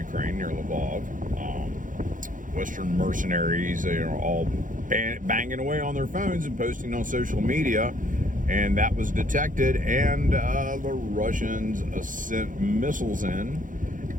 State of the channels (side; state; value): left; late; 0.38 ms